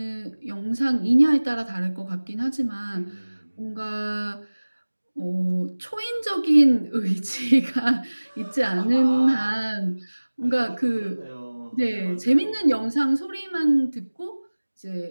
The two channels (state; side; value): inverted; both; correlation -1.00